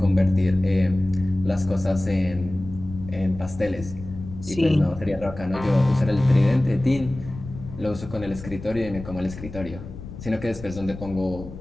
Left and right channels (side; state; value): left; noise; rumble, 13 dB below the sound